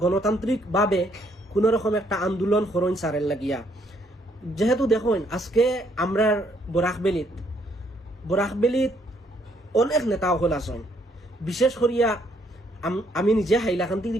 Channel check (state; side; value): normal; both; correlation 0.69